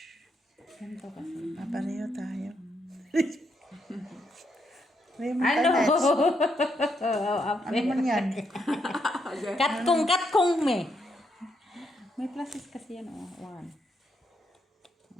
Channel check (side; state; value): both; normal; correlation 0.78